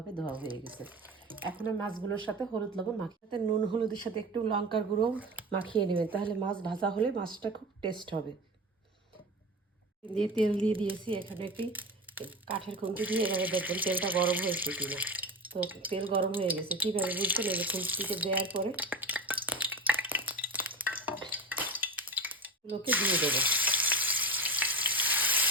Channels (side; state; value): both; normal; correlation 0.26